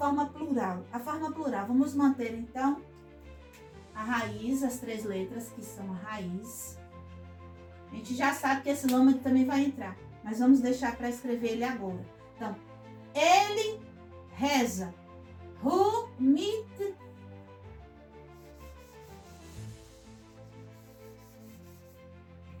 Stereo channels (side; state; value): both; identical; correlation 1.00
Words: plural. A forma plural, vamos manter então a raiz, as 3 letras que são a raiz. A gente já sabe que esse lâmade também vai entrar, mas vamos deixar para escrever ele agora. Então, ele reza. Hu mit.